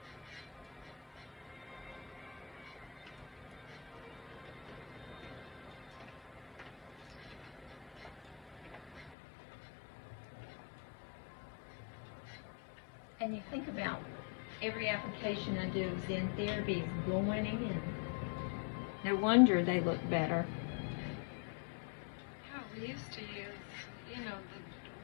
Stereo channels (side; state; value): right; drops out; at 9.2 s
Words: And you think about every application I do of Zen therapy is going in. No wonder they look better. Yeah, we used to use,